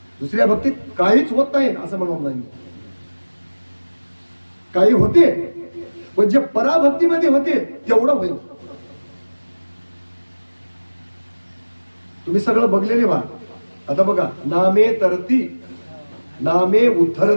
दुसऱ्या भक्तीत काहीच होत नाही असं म्हणून नाही. काही होते पण जे पराभक्तीमध्ये होते तेवढं होईल. तुम्ही सगळं बघलेले व्हा. आता बघा नामे तरती नामे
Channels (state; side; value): inverted; both; correlation -1.00